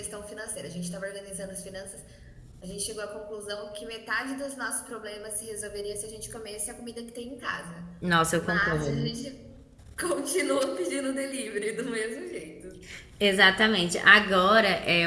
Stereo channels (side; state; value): both; identical; correlation 1.00